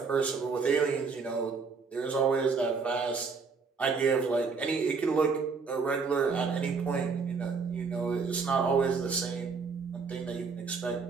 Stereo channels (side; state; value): left; quieter; 5.0 dB